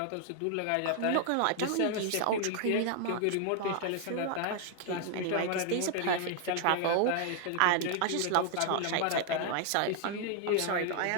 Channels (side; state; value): both; different; correlation 0.00